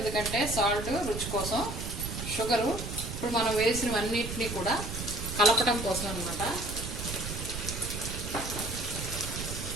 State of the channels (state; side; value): noise; right; rumble, 6 dB below the sound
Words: సాల్ట్ రుచి కోసం, షుగరు ఇప్పుడు మనం వేసినవన్నిటినీ కూడా కలపటం కోసం అన్నమాట.